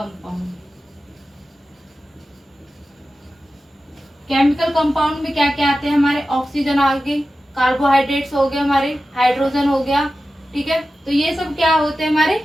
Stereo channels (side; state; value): both; normal; correlation 0.94